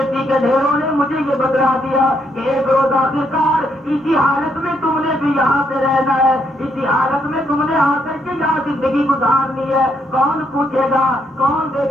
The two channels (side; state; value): both; normal; correlation 0.75